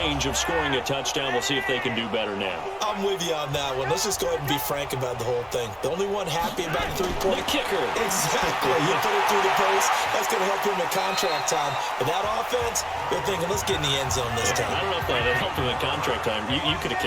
of scoring a touchdown. We'll see if they can do better now. I'm with you on that one. Let's just go ahead and be frank about the whole thing. The only one happy about the 3-point? The kicker. Exactly. You put it through the post. That's going to help him at contract time. But that offense, they're thinking, let's get in the end zone this time. I don't know if that helped him at contract time. You could have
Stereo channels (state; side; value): identical; both; correlation 1.00